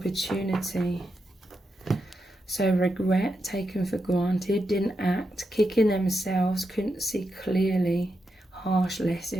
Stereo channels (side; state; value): both; normal; correlation 0.86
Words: So regret, taken for granted, didn't act, kicking themselves, couldn't see clearly, harsh